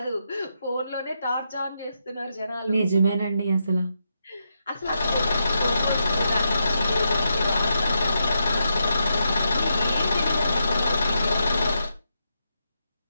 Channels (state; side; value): inverted; both; correlation -0.83